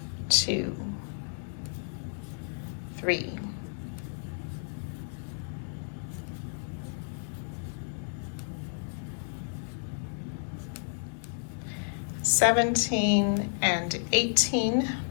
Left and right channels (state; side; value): silent; right; 57 dB below the other